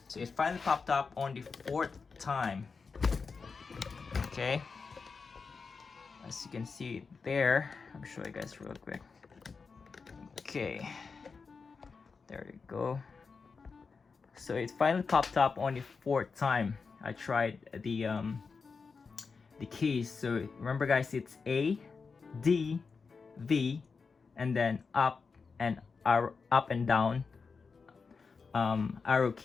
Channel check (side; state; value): right; quieter; 5.0 dB